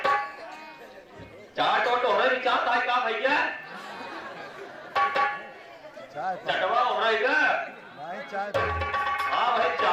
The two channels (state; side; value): identical; both; correlation 1.00